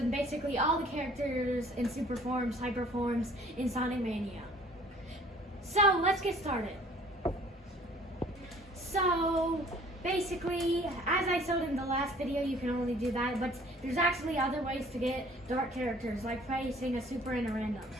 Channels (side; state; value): both; normal; correlation 0.54